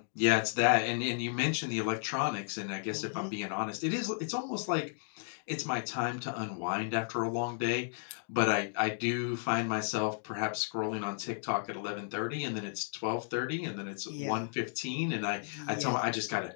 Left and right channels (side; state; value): right; silent; digital silence